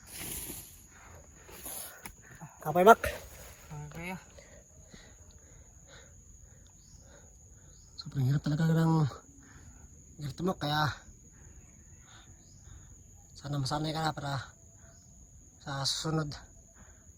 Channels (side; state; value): both; identical; correlation 1.00